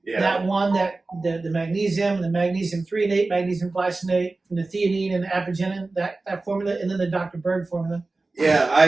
Yeah. that one that the magnesium, the magnesium threonate, magnesium glycinate, and the theanine and the apigenin, that formula, and then the Dr. Berg formula. Yeah,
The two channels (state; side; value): quieter; left; 3.4 dB